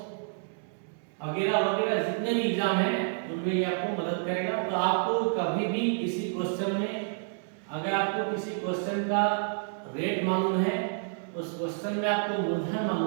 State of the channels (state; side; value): silent; left; digital silence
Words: वगैरह वगैरह जितने भी एग्जाम हैं उनमें ये आपको मदद करेगा। तो आपको कभी भी किसी क्वेश्चन में, अगर आपको किसी क्वेश्चन का रेट मालूम है, उस क्वेश्चन में आपको मूलधन